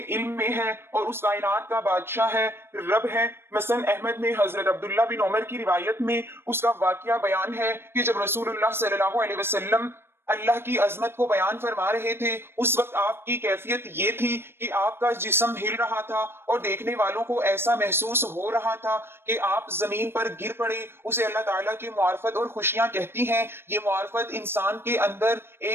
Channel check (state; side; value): late; left; 0.11 ms